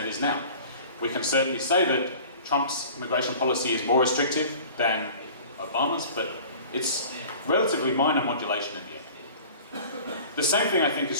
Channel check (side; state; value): both; inverted; correlation -0.43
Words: is now. We can certainly say that Trump's immigration policy is more restrictive than Obama's, but it's relatively minor modulation in the end. The same thing, I think,